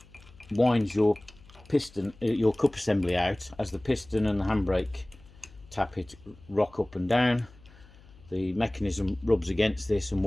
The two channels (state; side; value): noise; left; hum, 24 dB below the sound